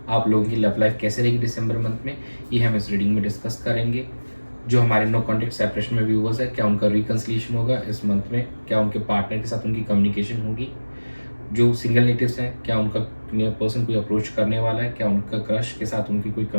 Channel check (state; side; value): inverted; both; correlation -1.00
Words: आप लोगों की love life कैसे रहेगी दिसंबर month में, ये हम इस reading में डिस्कस करेंगे। जो हमारे नो कॉन्टेक्ट सेपरेशन में व्यूवर्स है, क्या उनका रिकन्सिलिएशन होगा इस मंथ में, क्या उनके पार्टनर के साथ उनकी कम्युनिकेशन होगी। जो सिंगल नेटिव्स हैं, क्या उनका पर्सन कोई अप्रोच करने वाला है, क्या उनका क्रश के साथ उनकी कोई